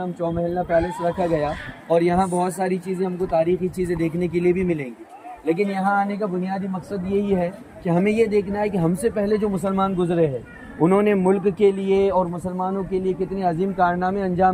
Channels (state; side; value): identical; both; correlation 1.00